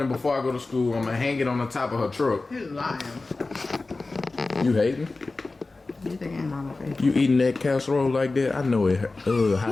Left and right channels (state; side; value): quieter; right; 3.5 dB